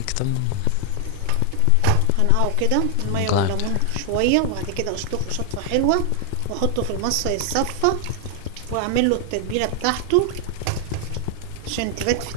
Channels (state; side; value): different; both; correlation 0.00